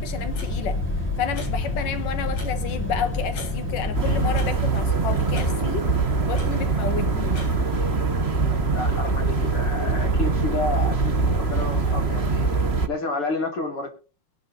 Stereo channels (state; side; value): late; right; 5.5 ms